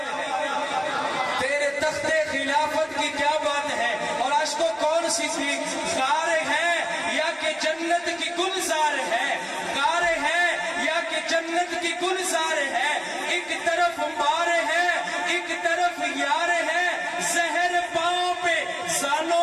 ہے، تیرے تخت خلافت کی کیا بات ہے. اور آج کو کون صدیق غار ہے یا کہ جنت کی گلزار ہے، غار ہے یا کہ جنت کی گلزار ہے. ایک طرف مار ہے ایک طرف یار ہے، زہر پاؤں پہ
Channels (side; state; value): both; identical; correlation 1.00